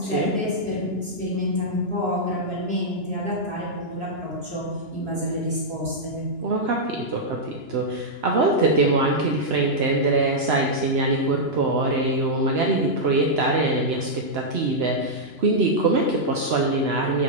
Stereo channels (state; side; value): late; left; 2.9 ms